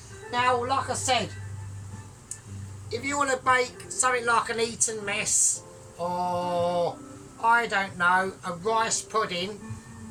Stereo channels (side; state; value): both; identical; correlation 1.00